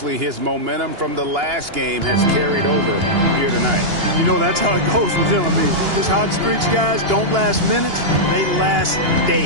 his momentum from the last game has carried over here tonight. You know, that's how it goes with him. I mean, his hot streaks, guys, don't last minutes. They last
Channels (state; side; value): late; left; 2.8 ms